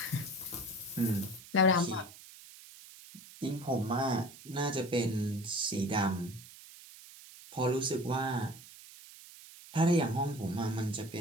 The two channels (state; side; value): noise; right; hiss, 18 dB below the sound